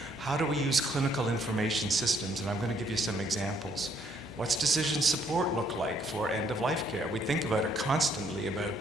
How do we use clinical information systems? And I'm going to give you some examples. What's decision support look like for end-of-life care? We think about it constantly about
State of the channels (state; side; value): normal; both; correlation 0.67